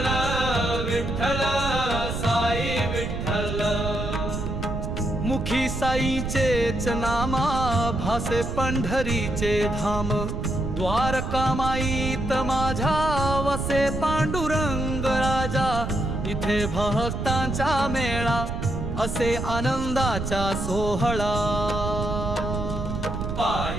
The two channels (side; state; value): right; noise; rumble, 4 dB below the sound